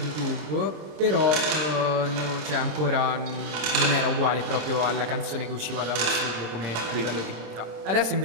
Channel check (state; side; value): late; left; 27 ms